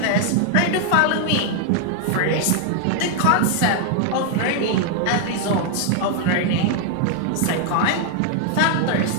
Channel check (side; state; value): both; different; correlation 0.00